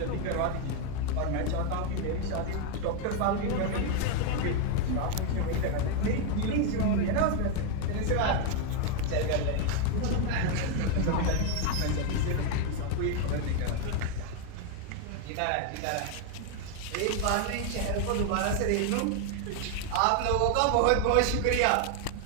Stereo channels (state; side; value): different; both; correlation 0.01